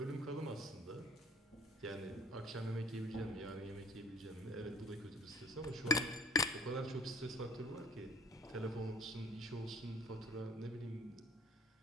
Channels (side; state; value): both; normal; correlation 0.52